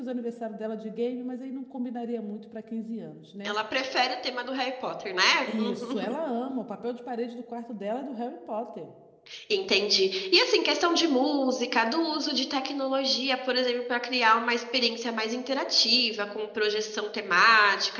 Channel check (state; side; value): identical; both; correlation 1.00